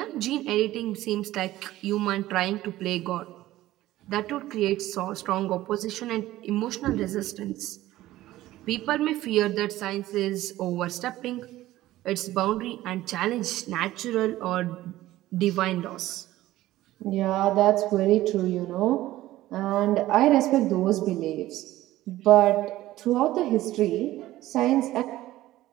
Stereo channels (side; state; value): left; quieter; 15.6 dB